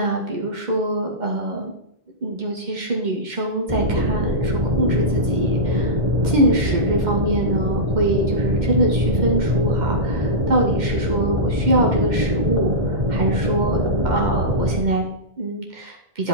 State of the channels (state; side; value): late; left; 2.1 ms